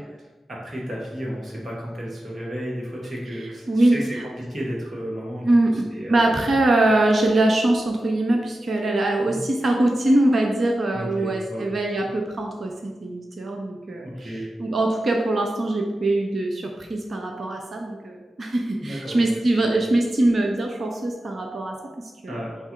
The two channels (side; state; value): both; normal; correlation 0.92